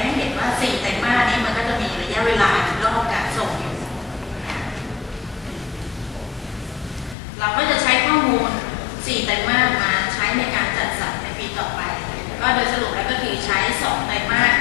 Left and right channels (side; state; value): right; drops out; at 7.2 s